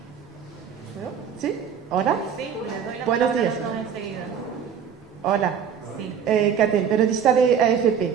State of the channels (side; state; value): left; quieter; 7.6 dB